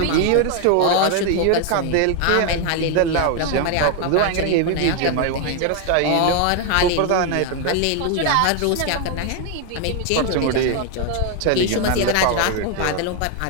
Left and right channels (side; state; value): both; different; correlation 0.01